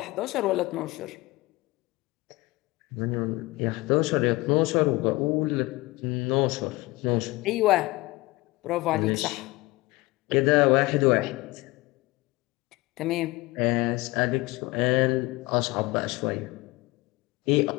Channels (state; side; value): quieter; right; 21.5 dB